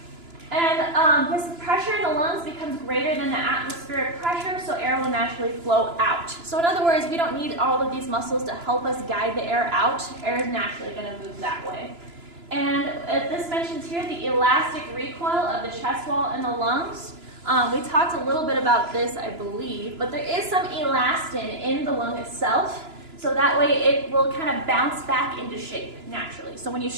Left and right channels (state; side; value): late; left; 2.9 ms